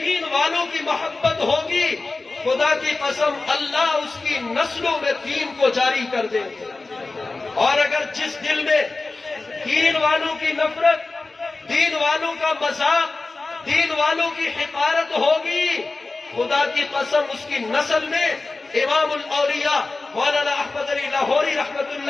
والوں کی محبت ہوگی خدا کی قسم اللہ اس کی نسلوں میں دین کو جاری کر دیں گے. اور اگر جس دل میں دین والوں کی نفرت، دین والوں کا مذاق، دین والوں کی حقارت ہوگی، خدا کی قسم اس کی نسل میں امام الاولیاء مولانا احمد علی لاہوری رحمت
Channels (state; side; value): quieter; right; 3.5 dB